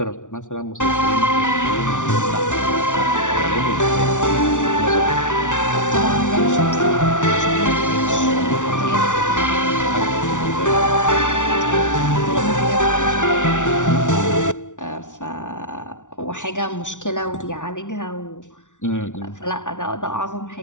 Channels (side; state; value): right; late; 0.87 ms